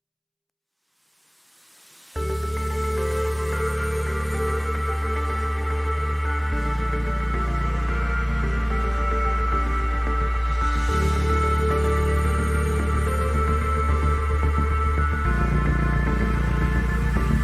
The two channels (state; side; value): identical; both; correlation 1.00